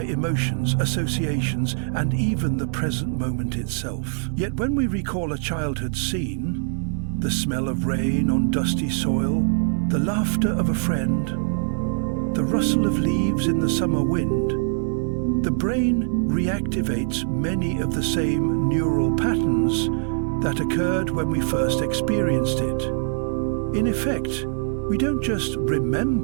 emotions, associations, and even the present moment itself. Yet when we recall a childhood scene, the smell of rain on dusty soil, the laughter of a friend, the rustle of leaves in the summer wind, the brain reactivates many of the same neural patterns that occurred when we first experienced it. In effect, we don't just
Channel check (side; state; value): left; silent; 63 dB below the other